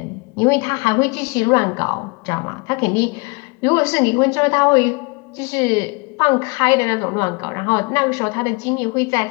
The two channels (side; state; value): right; quieter; 30.2 dB